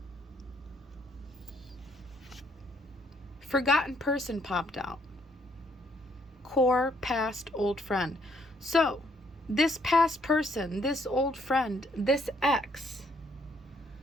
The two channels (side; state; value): both; normal; correlation 0.68